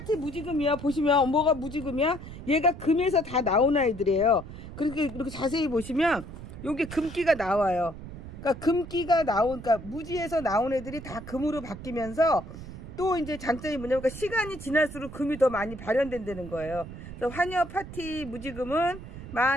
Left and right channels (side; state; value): right; noise; rumble, 12 dB below the sound